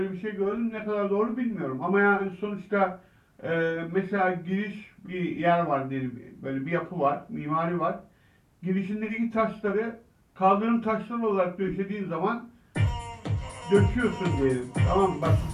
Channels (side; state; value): both; identical; correlation 1.00